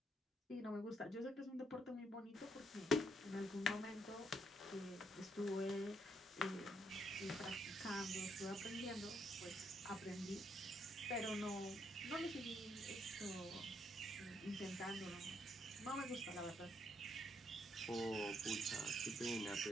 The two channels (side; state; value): both; normal; correlation 0.74